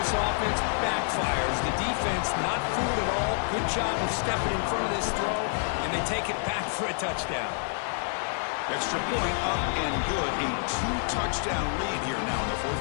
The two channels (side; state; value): right; silent; 59 dB below the other